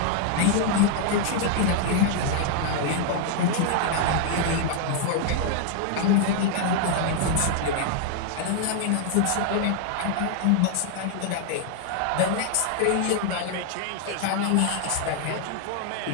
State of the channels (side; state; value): both; different; correlation 0.00